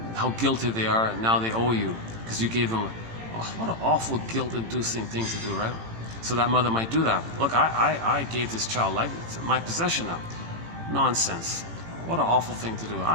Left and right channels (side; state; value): left; late; 18 ms